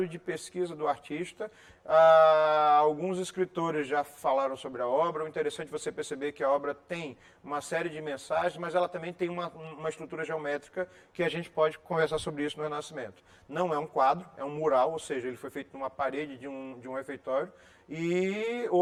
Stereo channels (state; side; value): identical; both; correlation 1.00